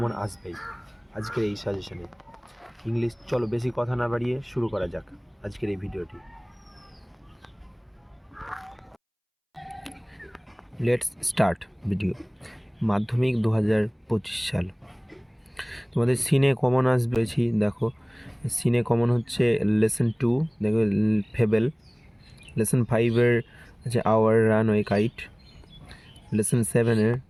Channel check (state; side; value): identical; both; correlation 1.00